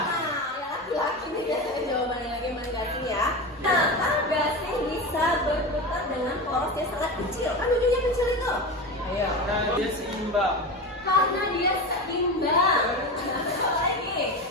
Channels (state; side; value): normal; both; correlation 0.24